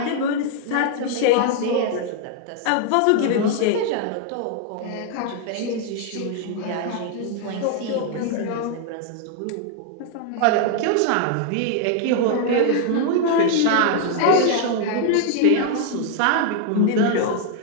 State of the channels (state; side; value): different; both; correlation 0.00